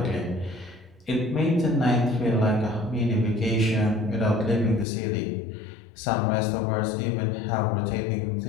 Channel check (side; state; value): right; drops out; at 4.9 s